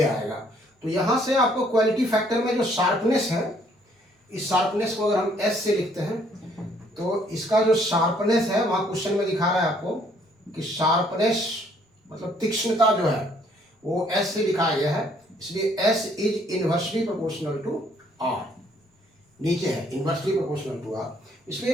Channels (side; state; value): both; normal; correlation 0.64